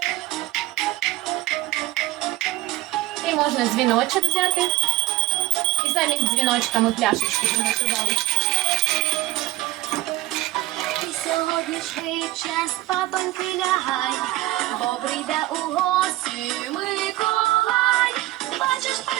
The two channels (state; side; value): quieter; left; 16.8 dB